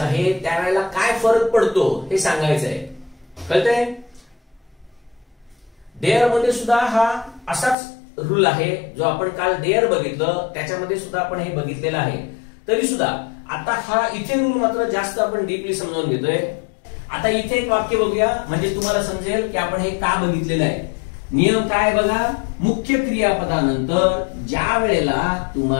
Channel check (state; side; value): drops out; right; at 7.8 s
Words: आहे त्यावेळेला काय फरक पडतो हे सांगायचं आहे. कळतंय? डेअर मध्ये सुद्धा हा असाच रूल आहे जो आपण काल डेअर बघितलं त्याच्यामध्ये सुद्धा आपण हे बघितलेलं आहे. तरी सुद्धा आता हा इथे रूल मात्र जास्त आपण डीपली समजावून घेतोय. आता इथे एक वाक्य बघूया म्हणजे तुम्हाला समजेल की आपण हे का बघितलेलं आहे. नियम काय बघा, मुख्य क्रियापदानंतर ज्या वेळेला